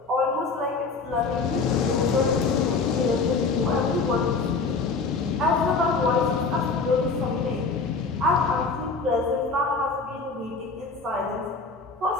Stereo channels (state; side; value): quieter; right; 4.3 dB